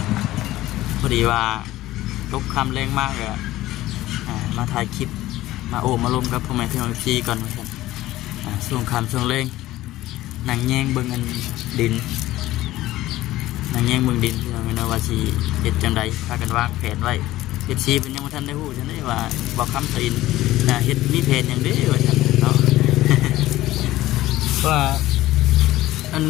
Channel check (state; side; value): quieter; right; 16.1 dB